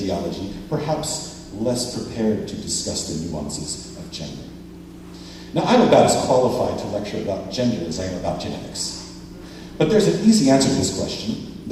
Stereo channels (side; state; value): both; identical; correlation 1.00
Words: perhaps less prepared to discuss the nuances of gender. Now, I'm about as qualified to lecture about gender as I am about genetics. But there's an easy answer to this question.